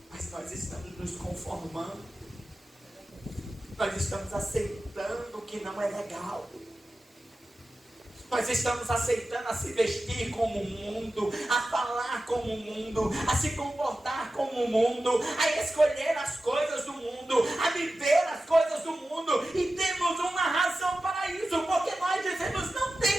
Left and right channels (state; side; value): normal; both; correlation 0.94